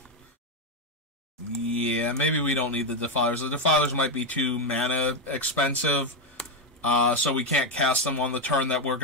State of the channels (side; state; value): both; normal; correlation 0.08